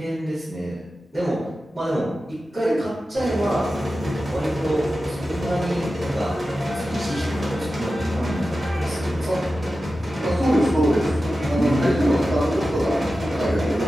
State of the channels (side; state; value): both; normal; correlation 0.93